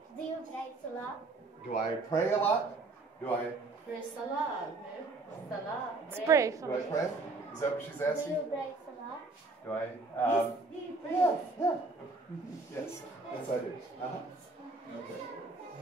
Do you pray salah? Do I pray a lot? Do I? Pray salah. Salah. Pray. Do I pray? Is that what she's asking? Do you pray salah? Do I? Do you pray? Yeah. Yes, I do. Okay.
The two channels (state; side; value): quieter; left; 3.5 dB